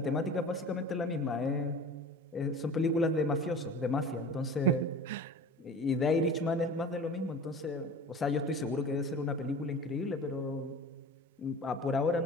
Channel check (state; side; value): normal; both; correlation 0.38